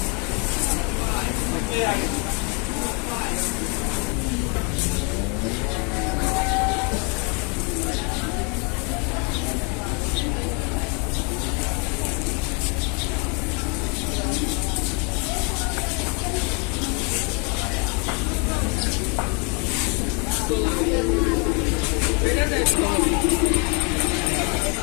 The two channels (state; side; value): quieter; right; 34.2 dB